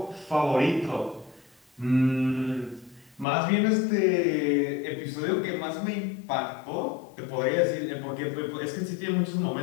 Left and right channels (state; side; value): drops out; right; at 3.2 s